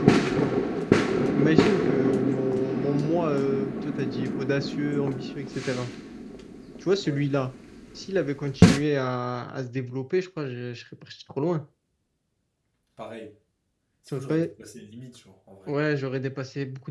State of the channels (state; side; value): identical; both; correlation 1.00